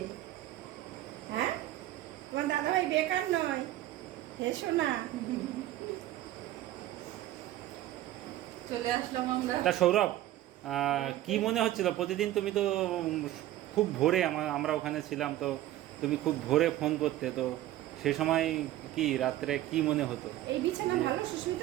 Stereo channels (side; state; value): left; quieter; 14.3 dB